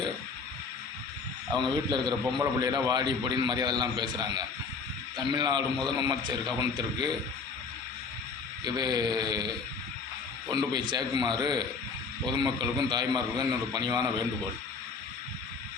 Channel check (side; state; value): right; quieter; 4.8 dB